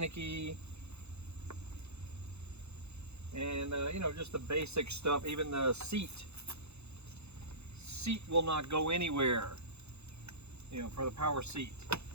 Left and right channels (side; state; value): left; late; 0.80 ms